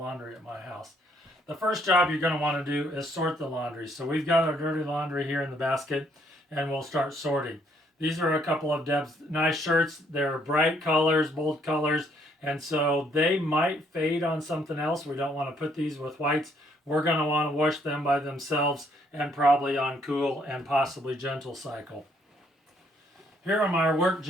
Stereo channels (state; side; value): normal; both; correlation 0.68